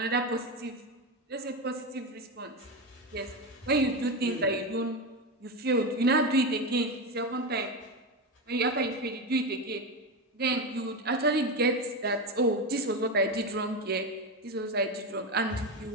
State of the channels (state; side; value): normal; both; correlation 0.15